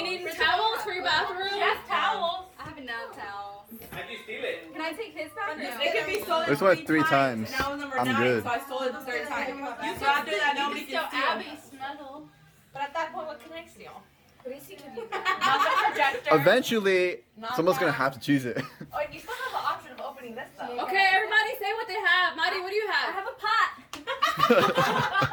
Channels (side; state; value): both; identical; correlation 1.00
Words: need towels for your bathroom? Yes, towels. I have enough towels. How'd you steal it? Can I take his back? It could be stolen This one 3 times. And now number I'm 9, good. so I stole it the third time. So after that, nobody Still can steal. Abby snuggle. But at that point, what can I steal? What is he gonna do? Not the projector. Eventually, Not someone's gonna that. have to choose it. Oh, you still have the option of opening this stuff. Okay, everybody say what they have. Maddie, what do you I have? have a pot.